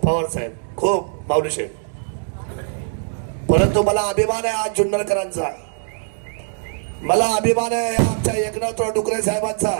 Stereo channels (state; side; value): silent; left; 65 dB below the other